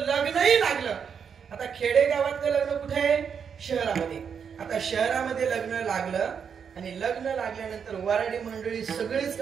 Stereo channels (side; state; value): left; quieter; 7.0 dB